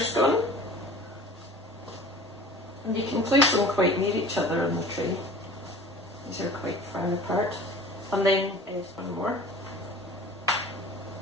And you can place them quite near each other on the tray. These are quite far apart. And then one more.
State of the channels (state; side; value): normal; both; correlation 0.43